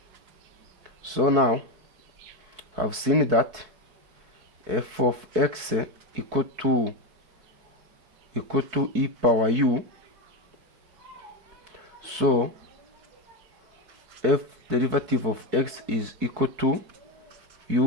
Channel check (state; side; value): late; left; 4.6 ms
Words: So now I've seen that f of x equal to e power u. So f derivative of x is equal to